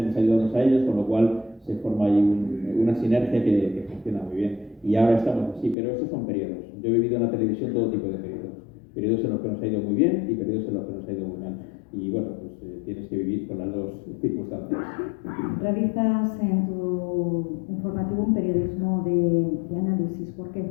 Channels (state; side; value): drops out; right; at 5.8 s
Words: ayudamos a ellos, con lo cual se forma ahí una sinergia que funciona muy bien. Y ahora estamos así, pero estos son periodos. Yo he vivido en la televisión todo tipo de periodos. Periodos en los que nos ha ido muy bien y periodos en los que nos ha ido muy mal. Y bueno, pues tienes que vivir con las dos circunstancias. Realizas en tu informativo un periodismo de análisis. ¿Por qué?